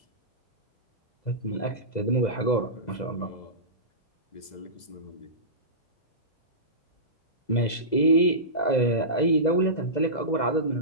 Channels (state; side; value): late; right; 2.0 ms